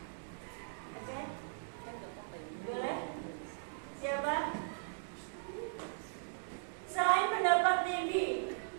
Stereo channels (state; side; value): silent; left; digital silence